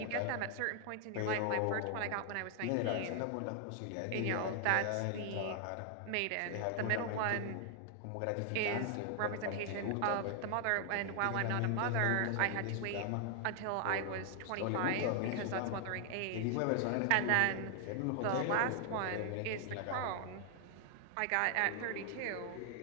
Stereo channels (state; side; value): different; both; correlation 0.00